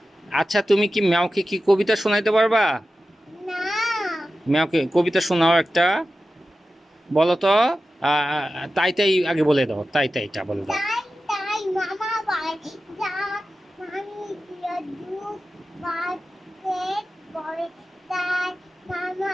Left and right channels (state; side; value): normal; both; correlation 0.93